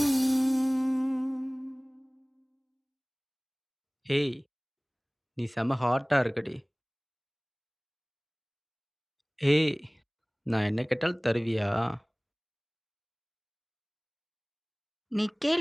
ஏய், நீ செம ஹாட்டாக இருக்கடி. ஏய், நான் என்ன கேட்டாலும் தருவியா? நீ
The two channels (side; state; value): both; identical; correlation 1.00